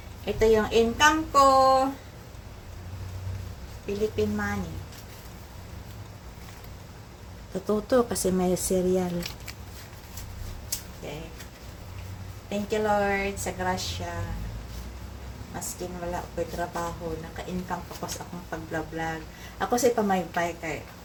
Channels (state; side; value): identical; both; correlation 1.00